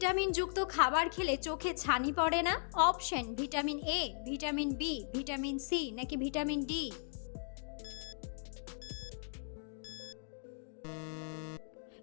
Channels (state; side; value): silent; right; digital silence